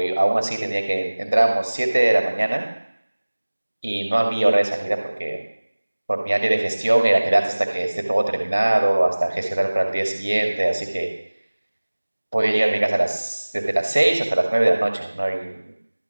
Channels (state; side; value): inverted; both; correlation -1.00